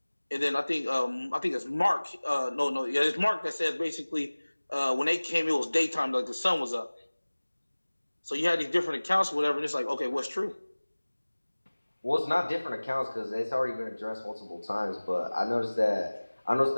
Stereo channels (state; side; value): inverted; both; correlation -1.00